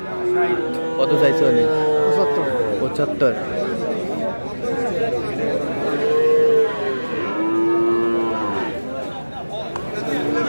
কত চাইছে উনি? 75।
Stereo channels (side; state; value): both; inverted; correlation -1.00